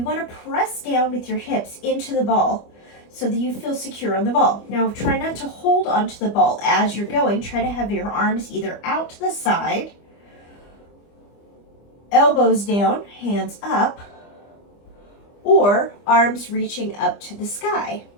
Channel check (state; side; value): late; right; 25 ms